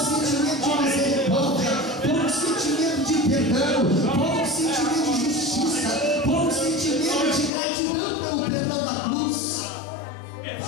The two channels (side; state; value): right; drops out; at 7.5 s